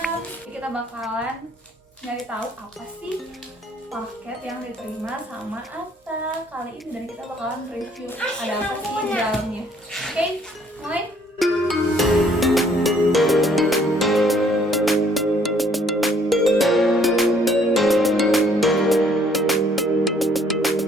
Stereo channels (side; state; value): both; normal; correlation 0.62